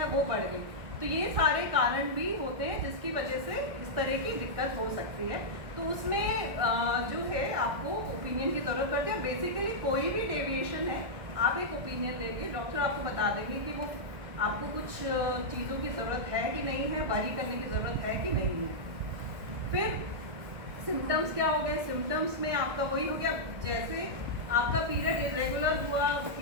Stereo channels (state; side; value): late; left; 1.6 ms